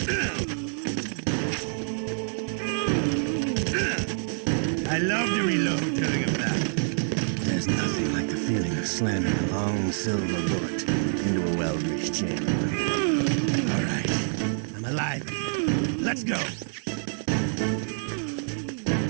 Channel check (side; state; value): left; silent; digital silence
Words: love to reload during a battle. There's nothing like the feeling of slamming a long silver bullet into a well-greased chamber. All right, I'm alive. Let's go.